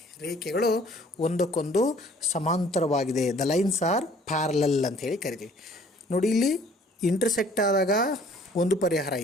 ರೇಖೆಗಳು ಒಂದಕ್ಕೊಂದು ಸಮಾಂತರವಾಗಿದೆ. ದ ಲೈನ್ಸ್ ಆರ್ ಪ್ಯಾರಲಲ್ ಅಂತ ಹೇಳಿ ಕರಿತೀವಿ. ನೋಡಿ, ಇಲ್ಲಿ ಇಂಟರ್ಸೆಕ್ಟ್ ಆದಾಗ ಒಂದು ಪರಿಹಾರ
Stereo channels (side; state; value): both; normal; correlation 0.56